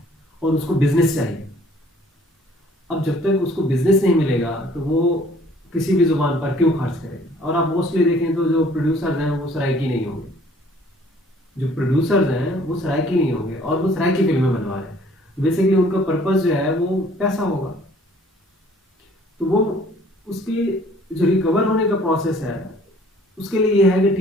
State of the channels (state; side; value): normal; both; correlation 0.57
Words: और उसको बिजनेस चाहिए। अब जब तक उसको बिजनेस नहीं मिलेगा तो वो किसी भी जुबान पर क्यों खर्च करेगा। और आप मोस्टली देखें तो जो प्रोड्यूसर्स हैं वो सराइकी नहीं होंगे, जो प्रोड्यूसर्स हैं वो सराइकी नहीं होंगे और वो सराइकी फिल्में बनवा रहे हैं। बेसिकली उनका पर्पस जो है वो पैसा होगा, तो वो उसकी जो रिकवर होने का प्रोसेस है उसके लिए ये है कि